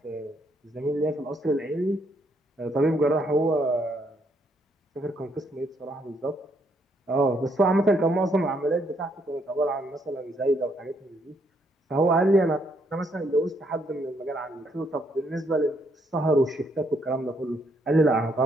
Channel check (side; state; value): both; normal; correlation 0.72